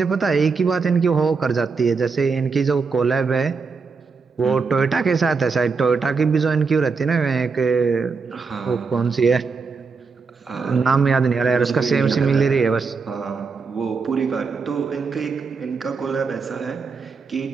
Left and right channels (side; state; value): left; quieter; 4.9 dB